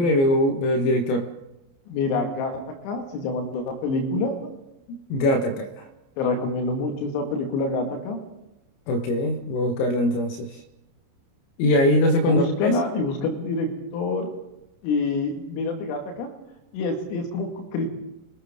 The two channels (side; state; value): right; late; 29 ms